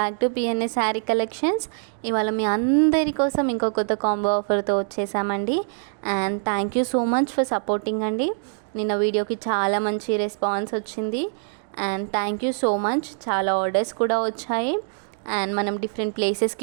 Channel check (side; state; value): left; silent; digital silence